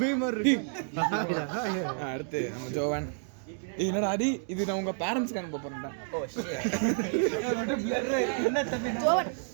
அடுத்து நம்ம ஜோவன். என்னடா அடி, இது நான் உங்க பேரண்ட்ஸ்க்கு அனுப்ப போறேன்டா.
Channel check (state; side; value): silent; left; 58 dB below the other